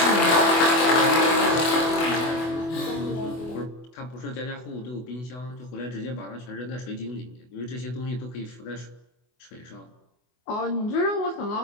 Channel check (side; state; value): right; late; 24 ms